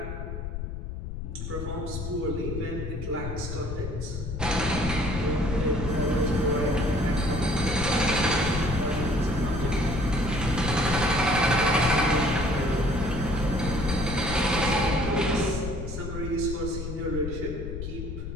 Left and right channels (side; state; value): left; noise; rumble, 6 dB below the sound